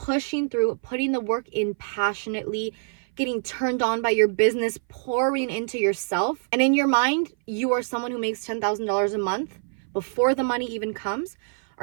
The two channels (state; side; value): silent; left; 58 dB below the other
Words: through, putting the work in passionately, getting turned on by your business, pouring into yourself. And in your mind, you are someone who makes $10,000 a month before the money even comes.